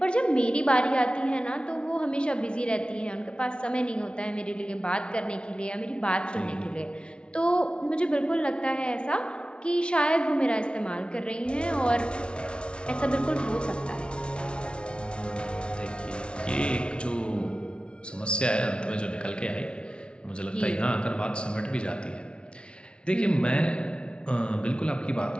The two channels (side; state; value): right; late; 0.057 ms